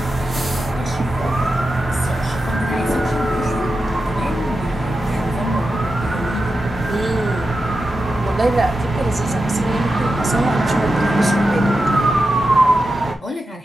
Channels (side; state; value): both; normal; correlation 0.90